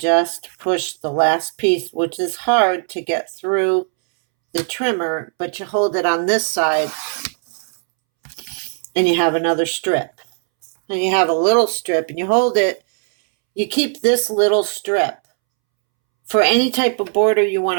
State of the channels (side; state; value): left; silent; 67 dB below the other